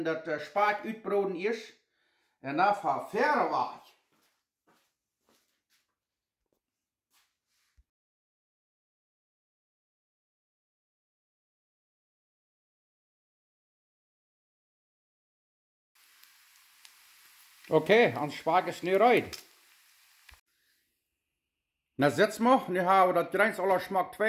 dat spaak uitbroden is. En dan verder weg. Okay, ons spaak is nu uit. Na setzen wir, nu haben wir das Greins aller Schmack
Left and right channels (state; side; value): identical; both; correlation 1.00